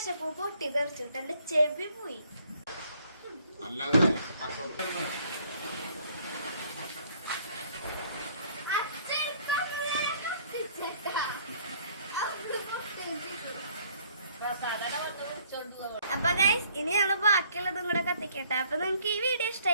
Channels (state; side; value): inverted; both; correlation -0.61